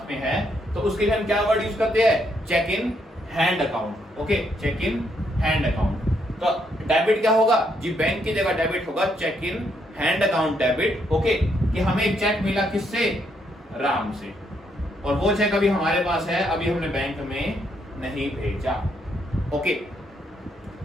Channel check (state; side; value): normal; both; correlation 0.75